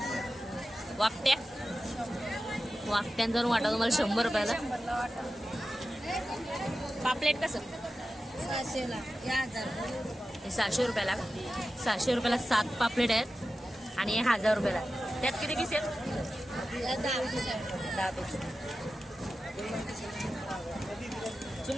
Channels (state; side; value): normal; both; correlation 0.93